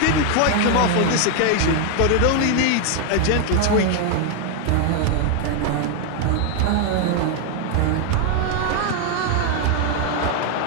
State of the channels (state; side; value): different; both; correlation 0.01